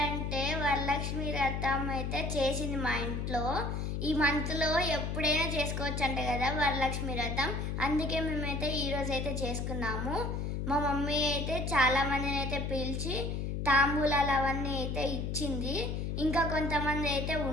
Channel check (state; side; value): noise; left; hum, 2 dB below the sound